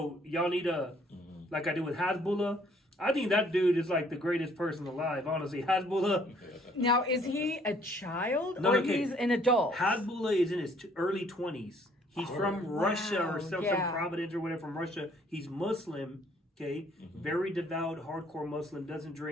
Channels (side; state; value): both; normal; correlation 0.62